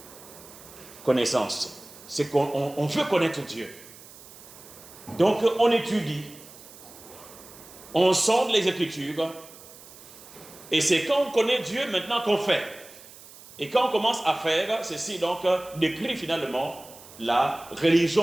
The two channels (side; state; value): right; noise; hiss, 19 dB below the sound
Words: Connaissance, c'est qu'on veut connaître Dieu. Donc on étudie, on sonde les Écritures, et c'est quand on connaît Dieu maintenant qu'on fait. Et quand on commence à faire, ceci donc décrit finalement la